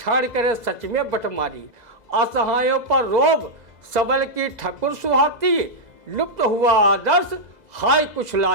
करे सच में बटमारी। असहायों पर रोब सबल की ठकुर सुहाती, लुप्त हुआ आदर्श हाय कुछ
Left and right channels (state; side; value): late; left; 2.0 ms